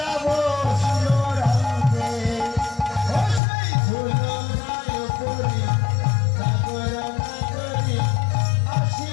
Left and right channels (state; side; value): drops out; right; at 3.4 s